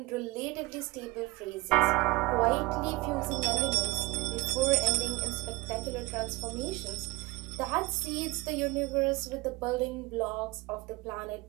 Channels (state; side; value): quieter; left; 22.8 dB